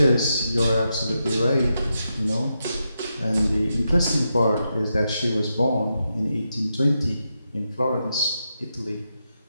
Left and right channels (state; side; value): inverted; both; correlation -0.86